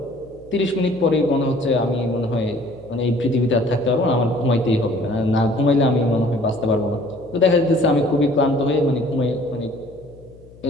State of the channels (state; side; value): noise; left; hum, 24 dB below the sound